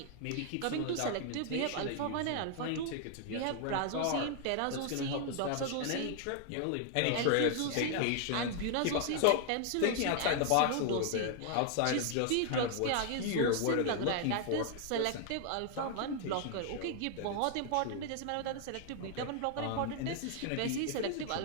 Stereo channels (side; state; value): both; different; correlation 0.00